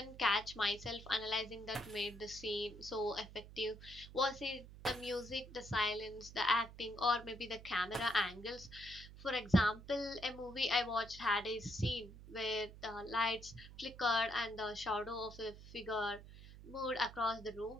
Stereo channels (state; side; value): noise; right; hum, 16 dB below the sound